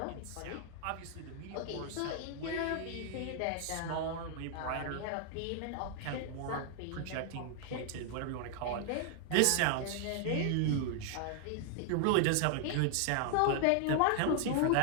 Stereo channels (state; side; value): different; both; correlation 0.00